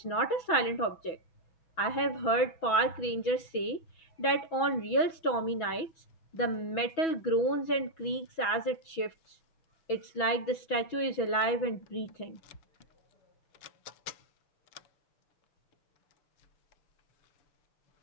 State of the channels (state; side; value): late; right; 6.1 ms